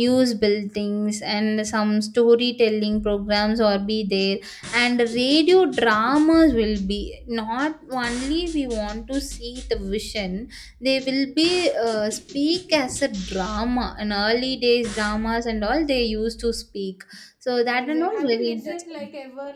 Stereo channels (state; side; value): identical; both; correlation 1.00